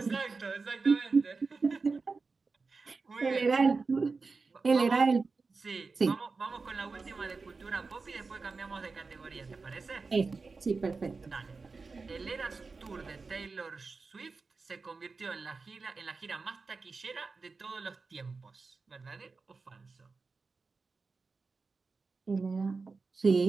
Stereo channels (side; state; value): left; quieter; 4.3 dB